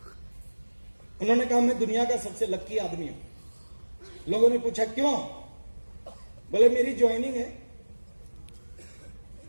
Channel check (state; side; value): inverted; both; correlation -1.00